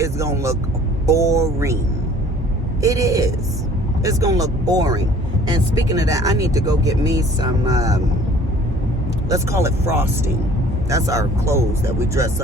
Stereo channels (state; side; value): normal; both; correlation 0.52